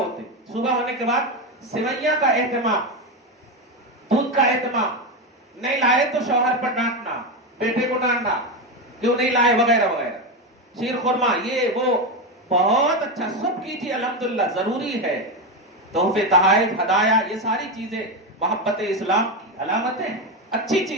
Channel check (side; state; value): both; normal; correlation 0.13